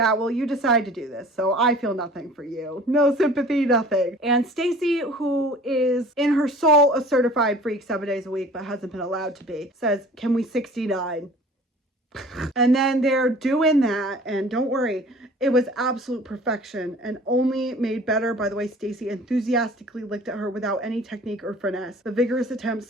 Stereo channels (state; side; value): normal; both; correlation 0.46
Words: well, you decide to do this, so I feel nothing for you. No sympathy, nothing. And Stacy, who is in her soul a certified freak 7 days a week, but hasn't been allowed to be, says, can we 69? And then they're doing that, and don't worry, it was absolute perfection and only made better by the way Stacy enthusiastically licked at her without any technique or finesse. The vigorous attempt